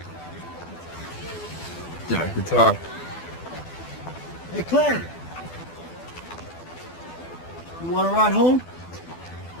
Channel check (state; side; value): late; right; 12 ms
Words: Yeah, I could talk. Hey, Clay! You want to ride home?